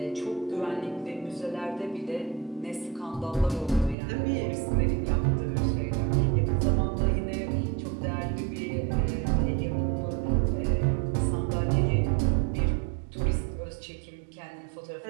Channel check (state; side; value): drops out; left; at 4.0 s